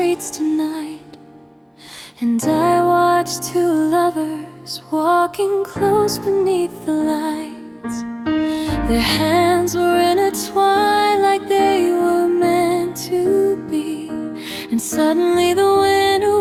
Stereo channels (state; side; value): identical; both; correlation 1.00